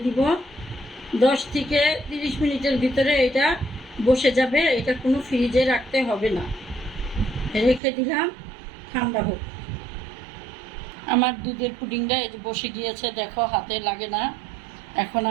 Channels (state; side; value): drops out; left; at 7.8 s